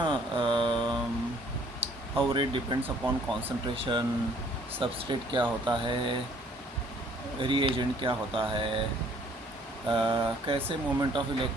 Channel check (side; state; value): both; normal; correlation 0.60